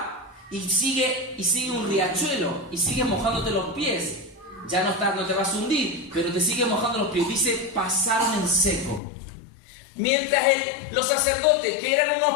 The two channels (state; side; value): drops out; right; at 9.0 s